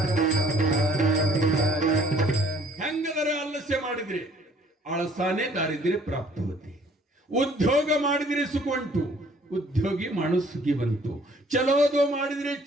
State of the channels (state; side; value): normal; both; correlation 0.58